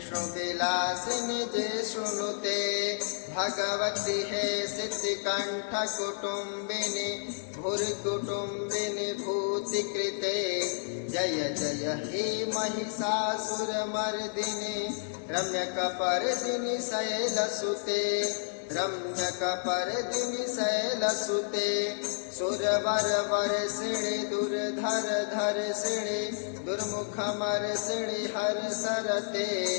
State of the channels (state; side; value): silent; right; digital silence